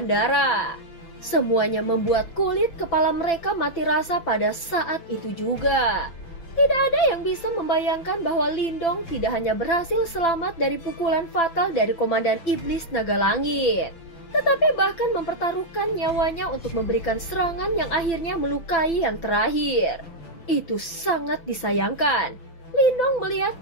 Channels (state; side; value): late; right; 6.0 ms